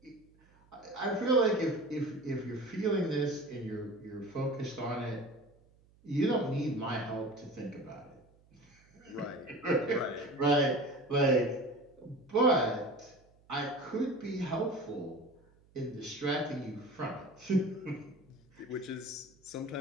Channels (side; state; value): right; noise; hum, 30 dB below the sound